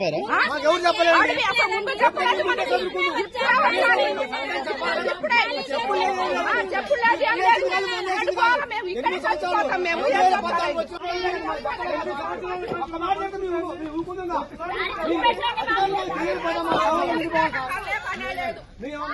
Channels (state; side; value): identical; both; correlation 1.00